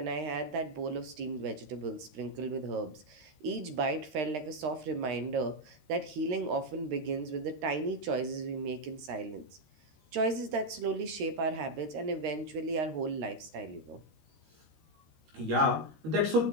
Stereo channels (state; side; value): late; left; 13 ms